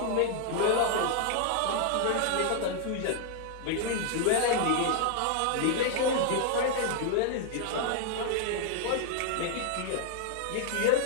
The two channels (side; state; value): both; different; correlation 0.00